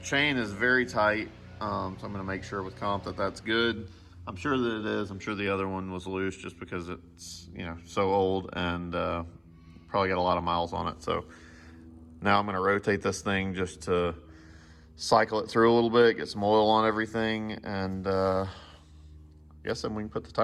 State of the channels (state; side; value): identical; both; correlation 1.00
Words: Chain is very tight. So I'm going to make sure with comp that that's good. I'm sure that it is. I'm sure the other one was loose just because it's, you know, so old and probably got a lot of miles on it. So now I'm going to rotate this thing just to cycle it through a little bit, get some oil on everything, and I guess then we can put the